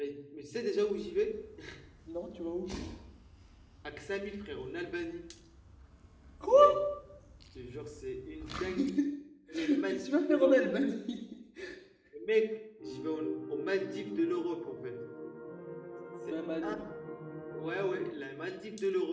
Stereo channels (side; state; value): both; identical; correlation 1.00